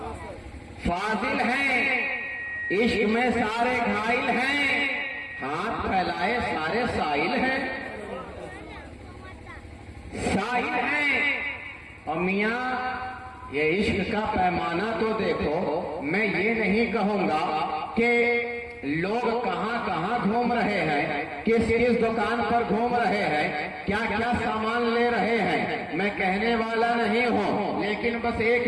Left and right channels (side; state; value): both; identical; correlation 1.00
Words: فاضل ہیں، عشق میں سارے گھائل ہیں، ہاتھ پھیلائے سارے سائل ہیں، سائل ہیں۔ اور میاں یہ عشق کا پیمانہ تو دیکھو، میں یہ نہیں کہوں گا کہ لوگ کہاں کہاں گھوم رہے ہیں، کس کس دکان پر گھوم رہے ہیں، کیا کیا سامان لے رہے ہیں، میں کہنے والا نہیں ہوں، لیکن بس ایک